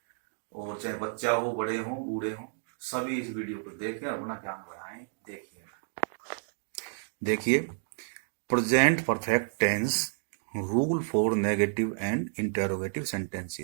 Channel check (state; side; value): silent; left; digital silence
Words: और चाहे बच्चा हो, बड़े हो, बूढ़े हो, सभी इस वीडियो को देखें और अपना ज्ञान बढ़ाएं। देखिए, present perfect tense rule for negative and interrogative